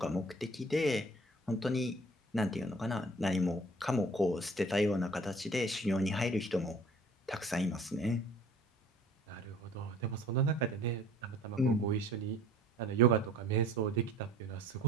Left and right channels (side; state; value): both; normal; correlation 0.51